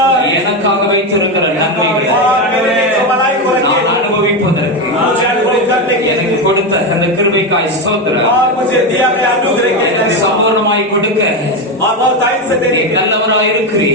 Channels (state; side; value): normal; both; correlation 0.13